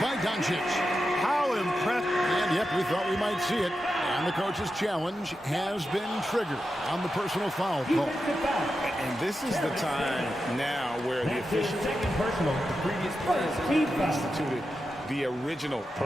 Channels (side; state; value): both; normal; correlation 0.89